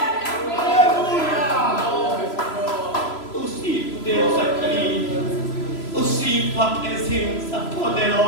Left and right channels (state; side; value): late; right; 3.0 ms